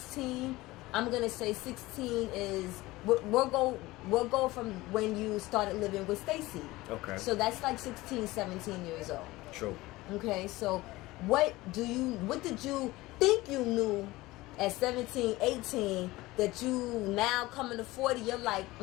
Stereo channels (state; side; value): quieter; right; 19.4 dB